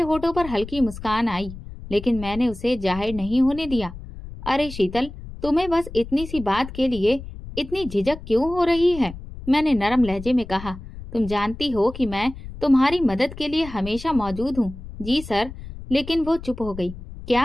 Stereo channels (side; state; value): left; noise; rumble, 13 dB below the sound